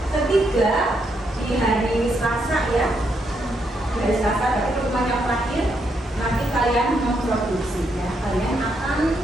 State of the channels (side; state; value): both; normal; correlation 0.78